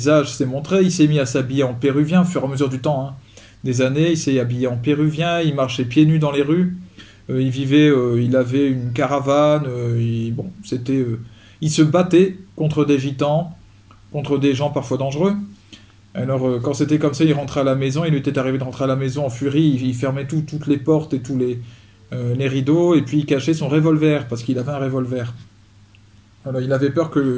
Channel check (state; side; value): identical; both; correlation 1.00